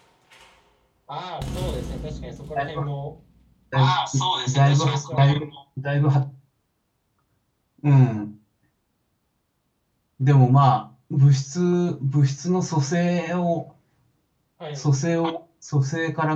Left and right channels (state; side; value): identical; both; correlation 1.00